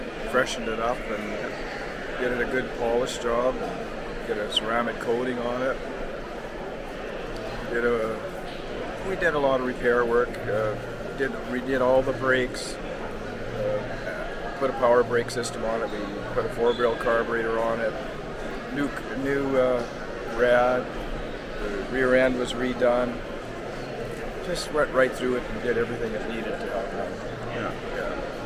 freshen it up and get it a good polish job, get a ceramic coating on it. We did a lot of repair work. We did all the brakes. Put a power brake system on it. We put a 4-barrel carburetor on it. New rad. The rear end was redone. Just went right through it and did everything it needed to happen. Yeah.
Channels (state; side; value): identical; both; correlation 1.00